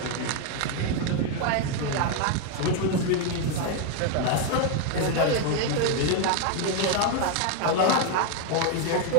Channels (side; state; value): both; different; correlation 0.01